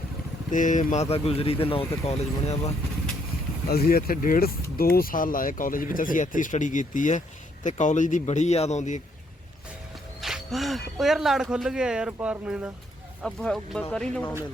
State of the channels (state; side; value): normal; both; correlation 0.70